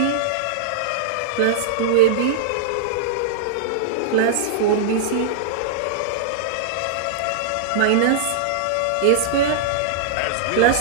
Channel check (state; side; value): different; both; correlation -0.02